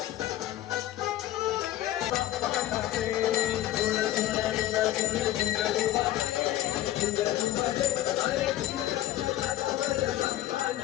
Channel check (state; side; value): quieter; right; 13.9 dB